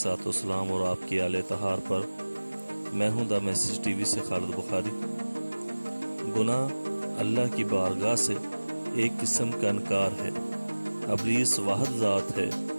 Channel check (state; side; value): inverted; both; correlation -1.00